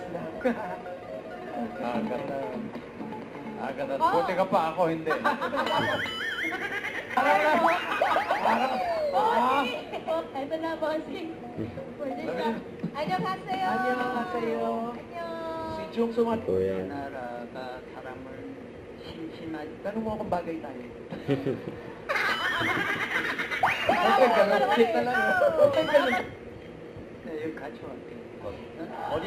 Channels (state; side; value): identical; both; correlation 1.00